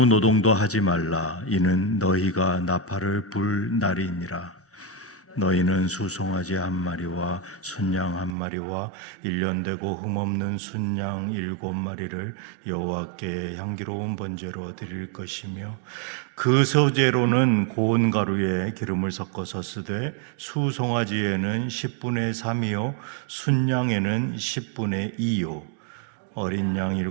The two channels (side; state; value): left; drops out; at 8.3 s